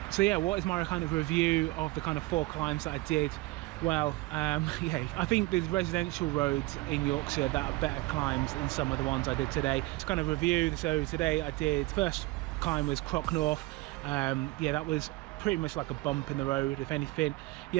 So yeah, what is my kind of review of the kind of 4 climbs that I did? Well, yeah, I think there's residential roads in Yorkshire that are better climbs than some of the ones I did today. Just kind of review. So today I did, first climb was Crocknorth. Yeah, that was pretty much like a bump in the road, if anything.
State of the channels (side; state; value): left; quieter; 20.8 dB